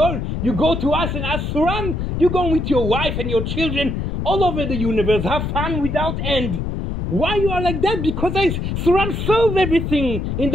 to us and ask Suran, you go with your wife and your children all over the universe. Have fun without end. Why you are like that? Because Suran solved everything in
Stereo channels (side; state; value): left; noise; rumble, 3 dB below the sound